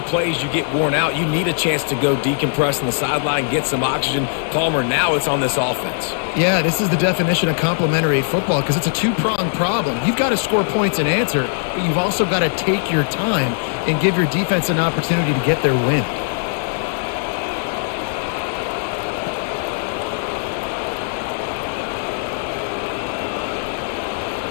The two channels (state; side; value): silent; right; 66 dB below the other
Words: plays, you get worn out. You need a chance to go decompress on the sideline, get some oxygen. Palmer, now it's on this offense. Yeah, this is the definition of complementary football because it's a two-pronged problem. You've got to score points and answer, but you've also got to take your time and give your defense an opportunity to get their win.